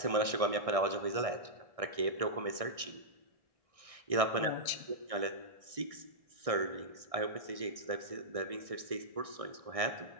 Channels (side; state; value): left; late; 1.6 ms